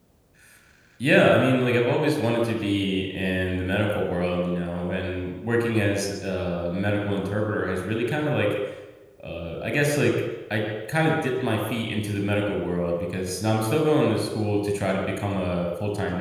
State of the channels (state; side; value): identical; both; correlation 1.00